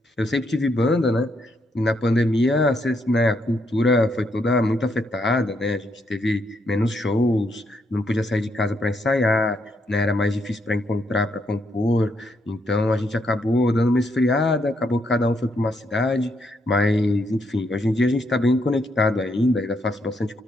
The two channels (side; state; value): both; normal; correlation 0.76